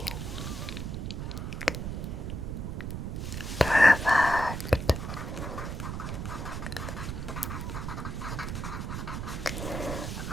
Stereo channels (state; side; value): noise; right; rumble, 4 dB below the sound